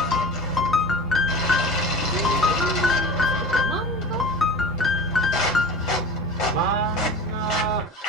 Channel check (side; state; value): both; normal; correlation 0.34